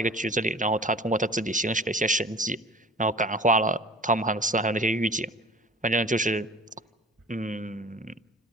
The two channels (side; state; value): both; normal; correlation 0.42